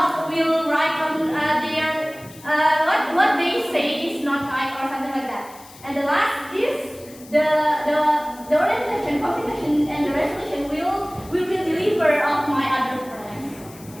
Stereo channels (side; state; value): left; noise; hiss, 21 dB below the sound